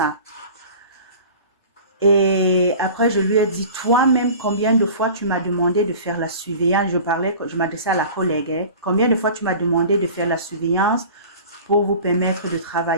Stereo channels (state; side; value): inverted; both; correlation -0.40